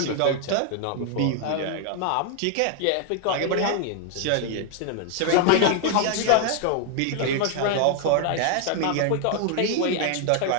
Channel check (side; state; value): both; different; correlation 0.00